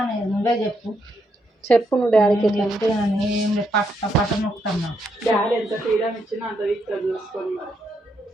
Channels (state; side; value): normal; both; correlation 0.78